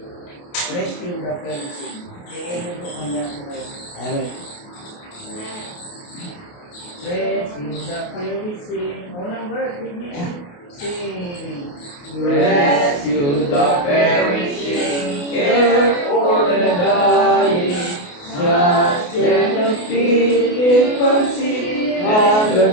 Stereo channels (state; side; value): late; right; 28 ms